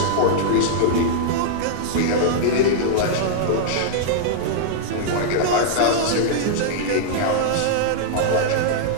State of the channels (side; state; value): both; different; correlation -0.02